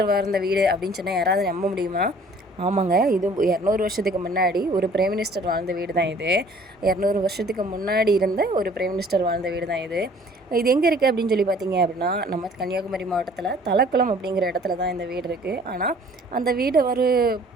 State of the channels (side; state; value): both; normal; correlation 0.54